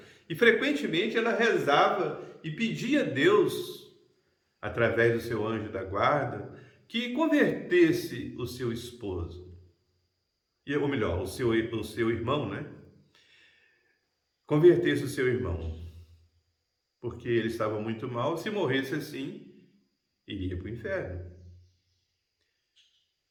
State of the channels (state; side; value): identical; both; correlation 1.00